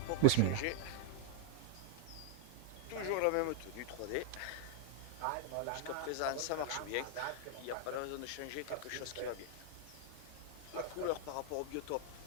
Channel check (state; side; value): different; both; correlation 0.00